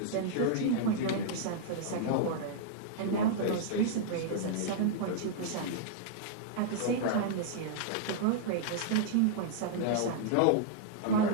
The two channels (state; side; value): different; both; correlation -0.01